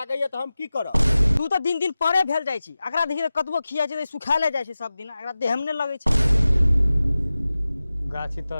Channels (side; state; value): both; inverted; correlation -0.95